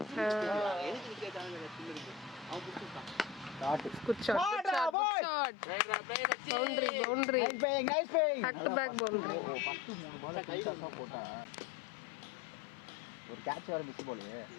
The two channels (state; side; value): drops out; right; at 5.0 s